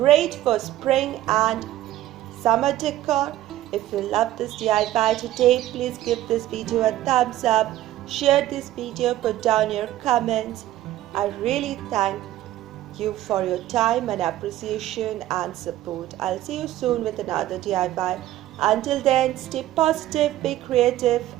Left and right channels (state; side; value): quieter; left; 14.2 dB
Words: for spring and summer decor. If you love this DIY today, please give this video a thumbs up, share this video, put down your comments. I really thank you for your time and appreciation and support. I'll see you soon with another DIY. Until then, stay positive, be creative